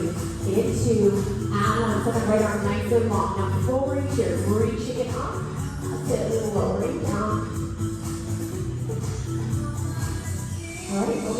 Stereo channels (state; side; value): identical; both; correlation 1.00